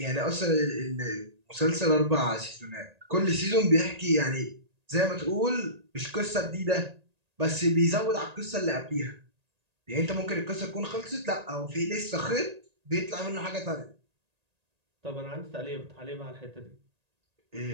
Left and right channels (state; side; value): late; left; 1.8 ms